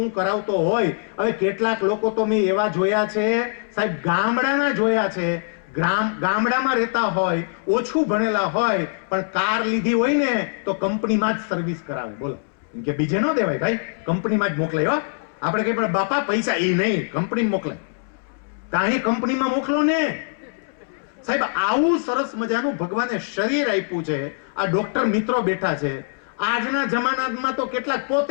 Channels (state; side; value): silent; right; 64 dB below the other